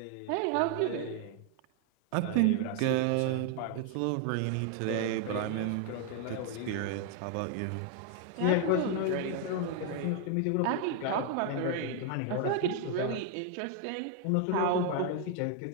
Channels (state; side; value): different; both; correlation 0.00